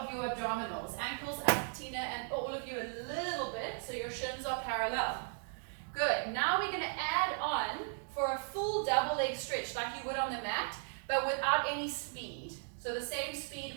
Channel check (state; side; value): silent; left; 53 dB below the other